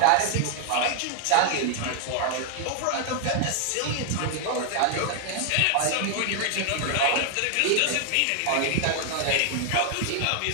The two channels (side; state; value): both; different; correlation 0.00